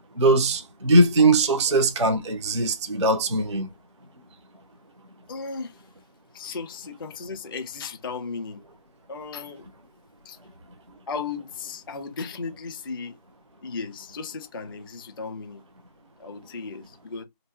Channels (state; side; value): inverted; both; correlation -0.41